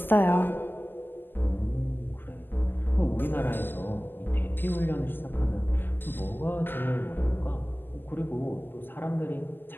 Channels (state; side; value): late; right; 0.093 ms